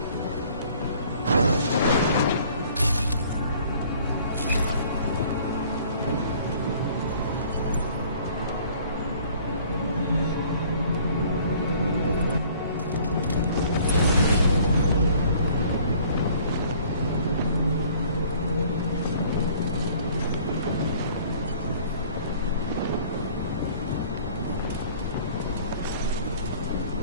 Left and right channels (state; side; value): inverted; both; correlation -0.54